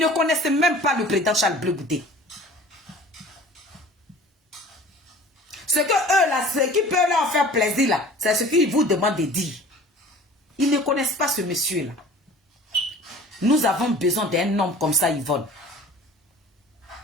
ne connaissaient même pas le président Charles Blé Goudé. Ce que eux là, ce qui peut leur faire plaisir là, c'est ce qu'ils vous demandent de dire. Ils ne connaissent pas ce monsieur là. Nous avons besoin d'un homme comme ça, Yvonne.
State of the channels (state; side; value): normal; both; correlation 0.45